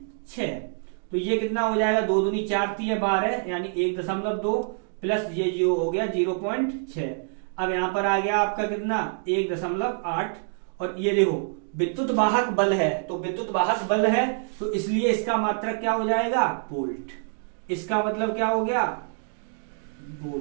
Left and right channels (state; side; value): silent; left; 61 dB below the other